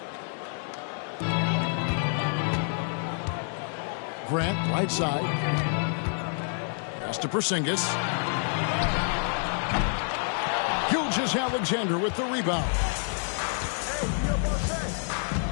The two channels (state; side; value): silent; right; 56 dB below the other